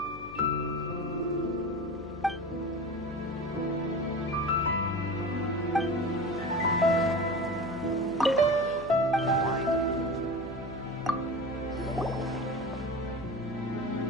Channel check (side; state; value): left; noise; hum, 15 dB below the sound